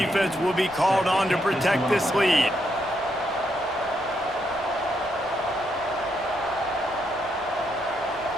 will be called on to protect this lead.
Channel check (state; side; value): noise; left; rumble, 23 dB below the sound